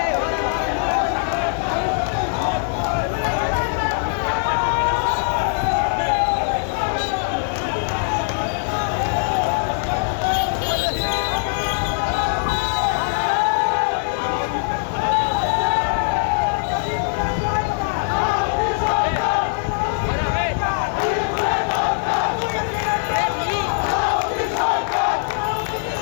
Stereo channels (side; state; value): right; silent; digital silence